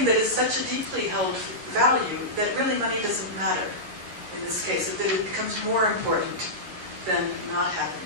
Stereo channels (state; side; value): late; left; 11 ms